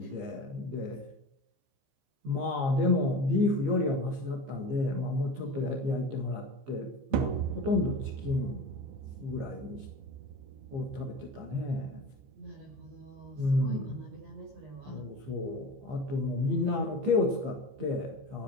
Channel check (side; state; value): left; late; 15 ms